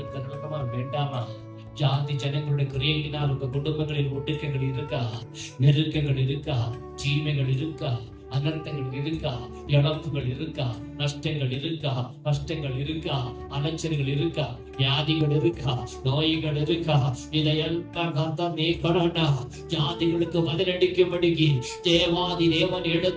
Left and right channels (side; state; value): both; identical; correlation 1.00